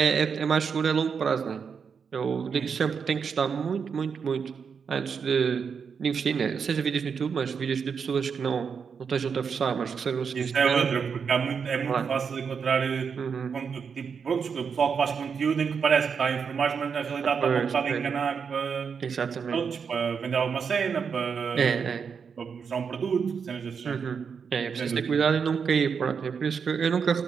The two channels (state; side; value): quieter; left; 6.3 dB